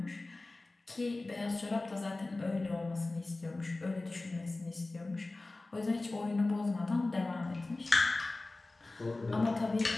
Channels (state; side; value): quieter; right; 3.1 dB